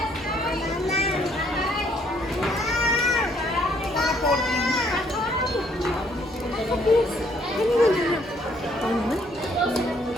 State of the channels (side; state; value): both; normal; correlation 0.66